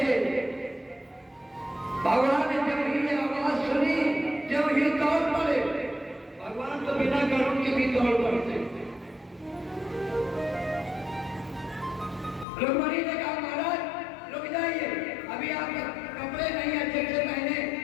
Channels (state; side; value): drops out; right; at 12.5 s